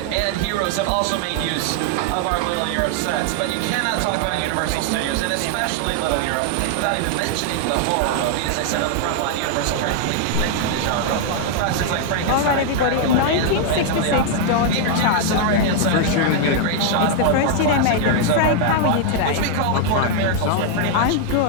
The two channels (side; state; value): both; different; correlation 0.00